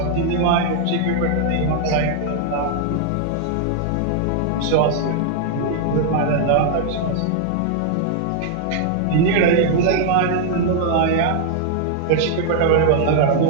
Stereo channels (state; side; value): different; both; correlation 0.00